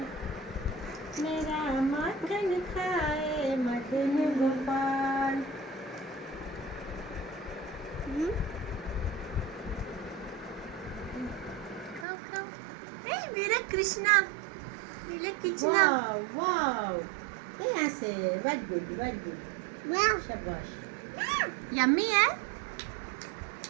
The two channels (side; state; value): left; drops out; at 12.1 s